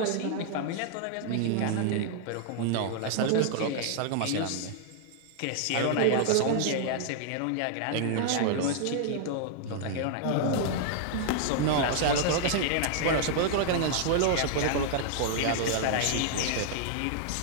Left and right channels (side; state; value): both; different; correlation -0.01